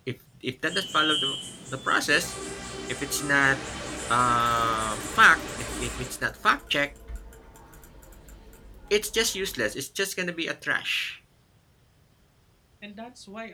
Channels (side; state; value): both; identical; correlation 1.00